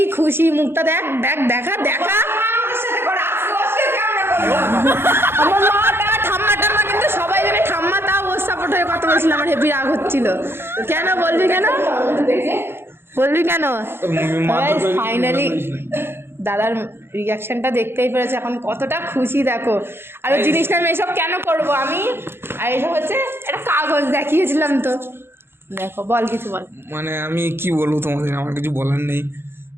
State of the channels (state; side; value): late; left; 0.11 ms